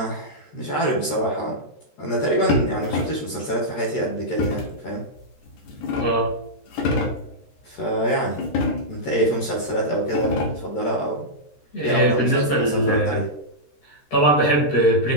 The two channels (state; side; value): late; right; 13 ms